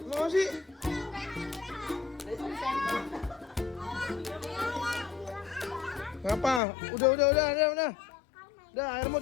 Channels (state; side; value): drops out; right; at 6.6 s